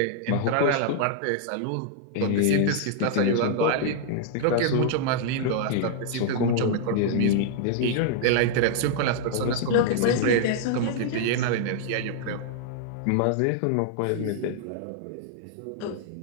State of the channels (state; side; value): different; both; correlation -0.01